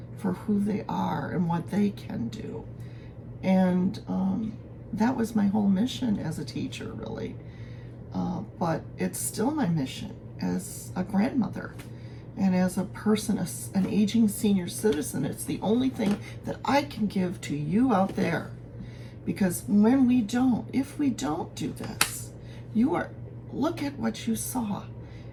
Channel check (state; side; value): identical; both; correlation 1.00